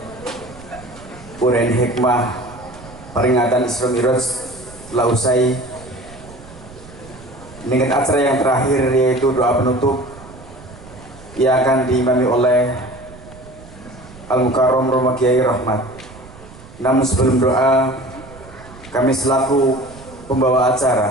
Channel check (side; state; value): right; noise; rumble, 19 dB below the sound